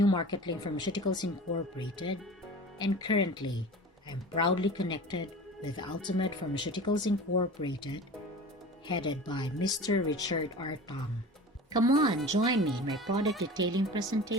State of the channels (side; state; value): both; normal; correlation 0.37